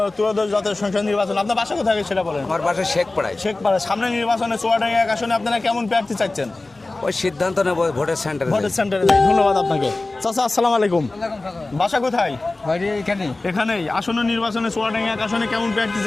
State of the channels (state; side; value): quieter; right; 3.1 dB